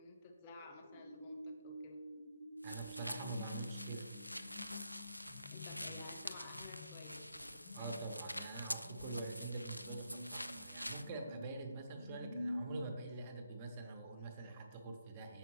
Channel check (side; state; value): both; inverted; correlation -0.79